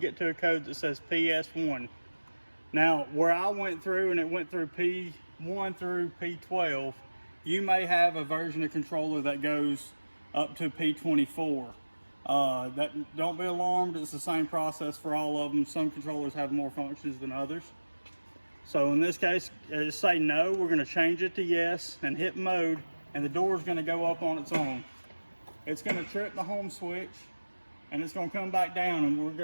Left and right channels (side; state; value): both; inverted; correlation -1.00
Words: to a code that says PS1. Now, where I went through and it went through P1 through P12, you may have a version of controller that goes up to P24. Don't be alarmed, it's the same process for all of them. Some controllers have more functions than others. So in this case, just say no, we're going to change it to yes and hit mode, and the door is going to go up on its own. It's going to trip the home switch and it's going to come back down, and we're